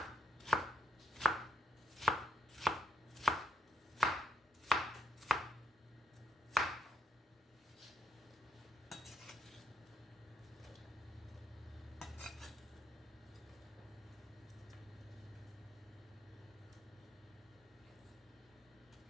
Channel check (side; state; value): both; normal; correlation 0.76